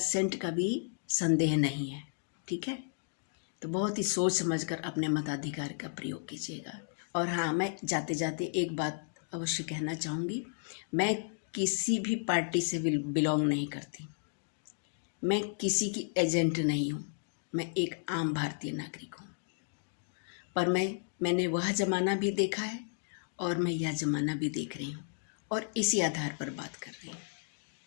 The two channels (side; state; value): right; silent; digital silence